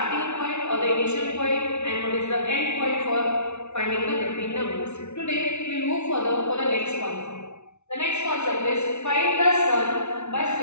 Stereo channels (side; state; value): right; late; 0.81 ms